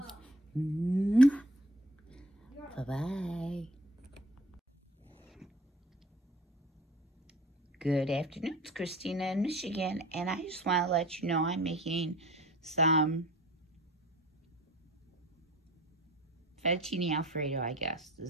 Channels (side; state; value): both; normal; correlation 0.46